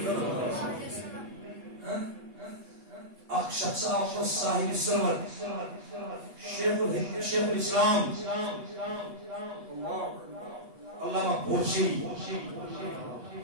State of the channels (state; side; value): late; left; 8.3 ms